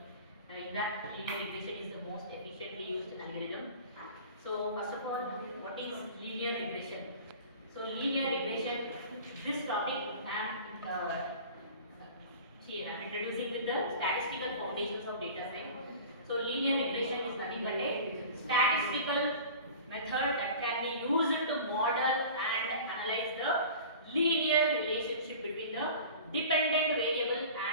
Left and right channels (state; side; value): inverted; both; correlation -0.40